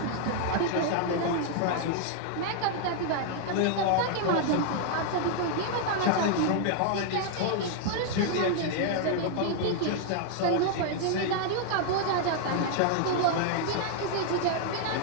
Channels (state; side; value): different; both; correlation 0.00